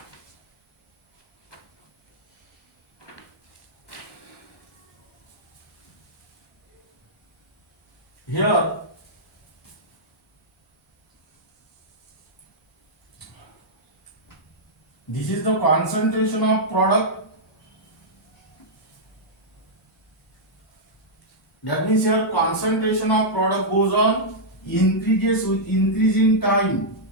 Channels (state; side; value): normal; both; correlation -0.09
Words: here this is the concentration of product. That means here concentration of product goes on increases with increasing time.